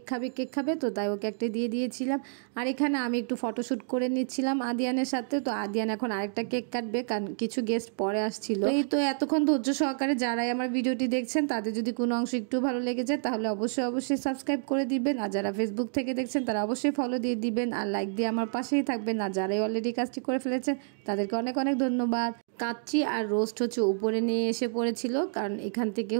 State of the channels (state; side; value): silent; left; digital silence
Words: খাবে, তো তাই ওকে একটা দিয়ে দিয়েছিলাম। আর এখানে আমি একটু ফটোশ্যুট করে নিচ্ছিলাম আদিয়ানের সাথে। তো আদিয়ান এখন আরেকটা কেক কাটবে, কারণ কিছু গেস্ট পরে আসছিল। এই তো এতক্ষণ ধৈর্য সহকারে যারাই আমার ভিডিওটি দেখছেন তাদের যদি কোনো অংশ একটু ভালো লেগে যায় তাহলে অবশ্যই সাবস্ক্রাইব করে দিবেন। আর যারা ফেসবুক থেকে দেখছেন তারা অবশ্যই ফলো দিয়ে দিবেন আর লাইক দিয়ে আমার পাশেই থাকবেন। আর যারাই অলরেডি কাজটি করে ফেলেছেন তাদেরকে অনেক অনেক ধন্যবাদ। কাচ্চি আর রোস্ট হচ্ছে উপরে নিয়ে এসে পড়েছিল, কারণ এখান থেকে